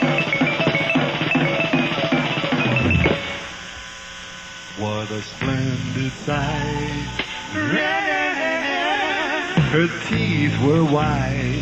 What a splendid sight. Her teeth were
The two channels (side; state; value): right; noise; rumble, 26 dB below the sound